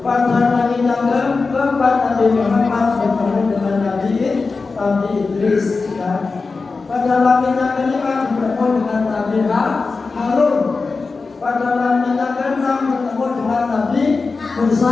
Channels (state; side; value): quieter; right; 4.2 dB